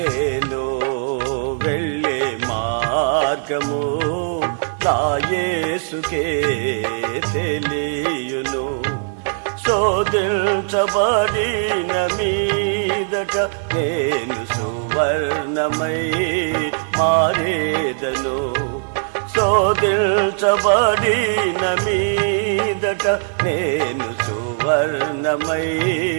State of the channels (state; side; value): silent; left; digital silence